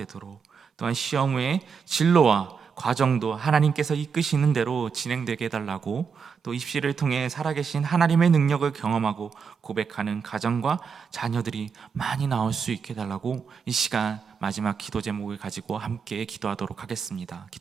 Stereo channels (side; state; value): left; quieter; 6.1 dB